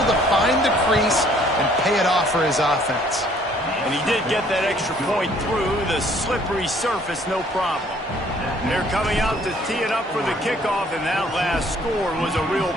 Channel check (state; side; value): normal; both; correlation 0.60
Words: to find the crease and pay it off for his offense. And he did get that extra point through the slippery surface, no problem. They're coming out to tee it up for the kickoff, and that last score was a real